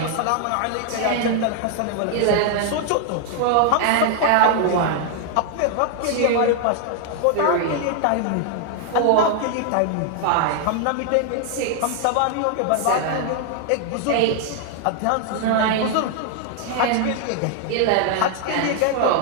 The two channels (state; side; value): different; both; correlation 0.00